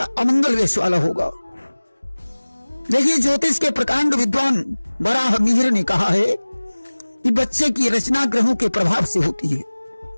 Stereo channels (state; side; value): inverted; both; correlation -1.00